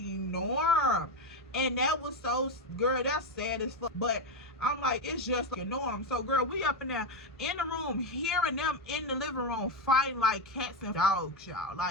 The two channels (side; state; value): both; normal; correlation 0.11